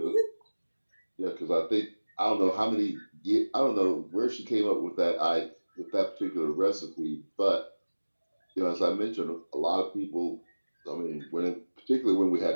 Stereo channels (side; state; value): both; inverted; correlation -1.00